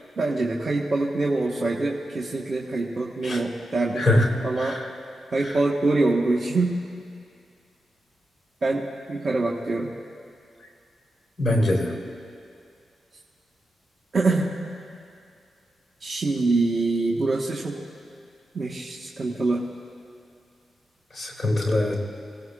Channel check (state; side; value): normal; both; correlation 0.88